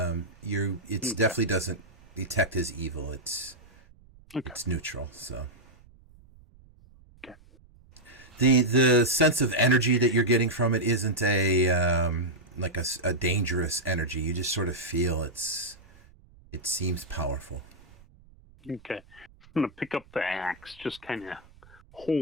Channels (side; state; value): right; noise; rumble, 26 dB below the sound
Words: definitely doesn't detect as evil. It's neutral. So. Okay. The sense of energy that you're getting from it isn't like a dangerous energy. You just sort of feel it seems powerful. Okay. I'm going to pick up the axe, just kind of